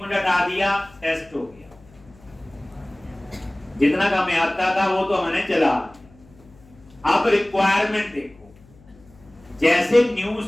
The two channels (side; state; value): left; noise; hum, 26 dB below the sound